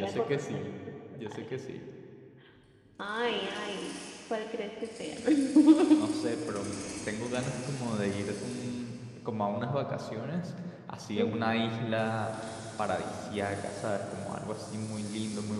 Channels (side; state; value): both; identical; correlation 1.00